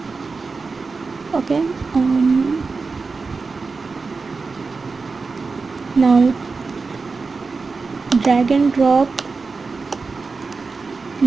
Okay, now drag and drop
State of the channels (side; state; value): left; quieter; 4.3 dB